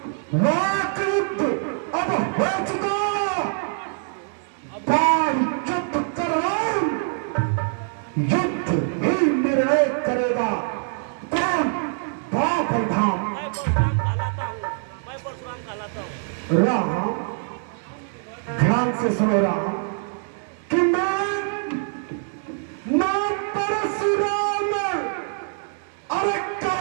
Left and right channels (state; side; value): silent; left; 63 dB below the other